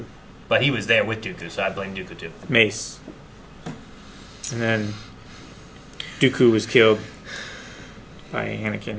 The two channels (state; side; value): identical; both; correlation 1.00